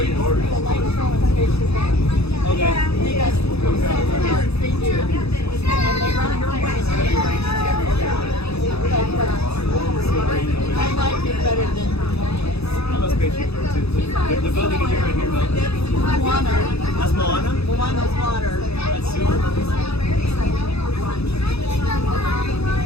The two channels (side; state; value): right; late; 0.79 ms